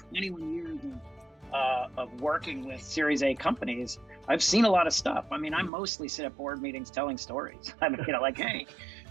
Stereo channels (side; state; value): left; drops out; at 5.7 s